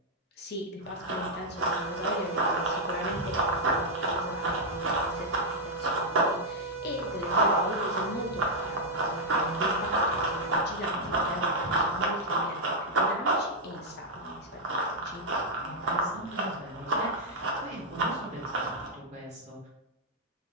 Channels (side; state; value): both; normal; correlation -0.03